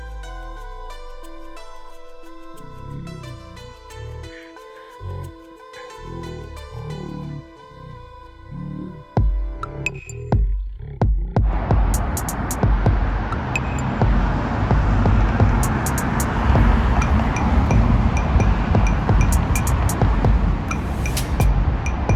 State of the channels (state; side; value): identical; both; correlation 1.00